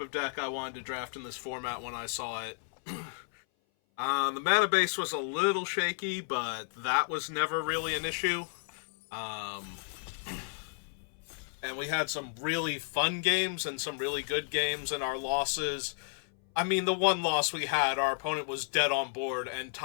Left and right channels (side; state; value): right; silent; 56 dB below the other